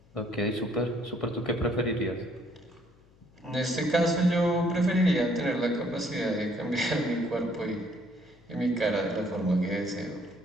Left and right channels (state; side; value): noise; left; hum, 29 dB below the sound